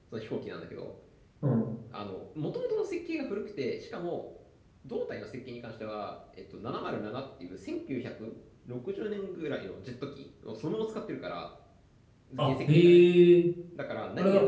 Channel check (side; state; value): both; identical; correlation 1.00